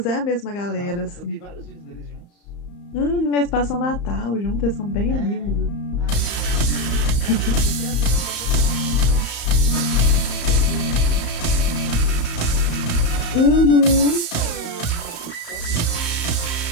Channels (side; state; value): right; late; 35 ms